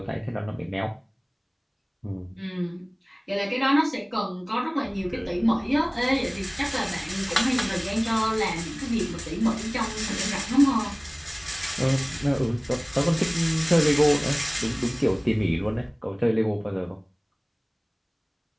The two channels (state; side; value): identical; both; correlation 1.00